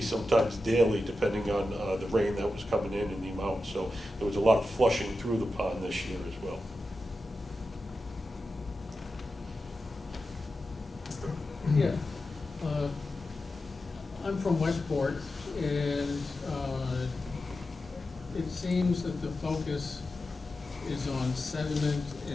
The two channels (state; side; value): normal; both; correlation 0.91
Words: sometimes daily, depending on the rain that was coming in and the amount. So there was a lot of flushing through the pond this year as well. Yeah. I'm from Westport, and it seems that the focus is on sediment